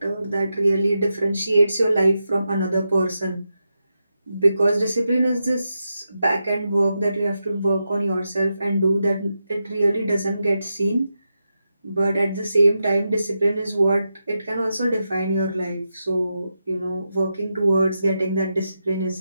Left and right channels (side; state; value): both; inverted; correlation -0.88